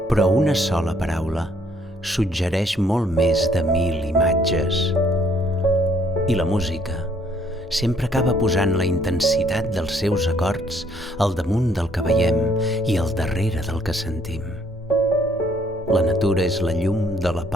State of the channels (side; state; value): both; normal; correlation 0.66